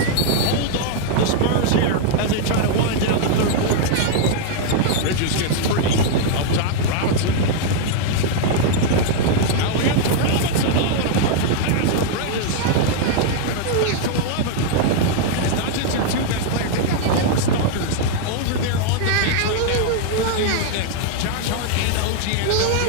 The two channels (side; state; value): both; different; correlation 0.00